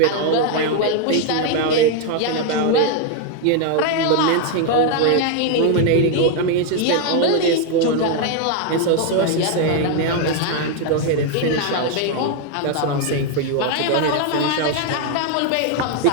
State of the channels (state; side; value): different; both; correlation 0.01